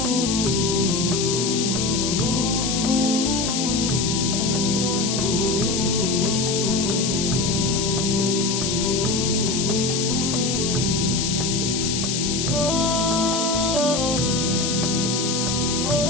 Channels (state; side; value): noise; left; hiss, 1 dB below the sound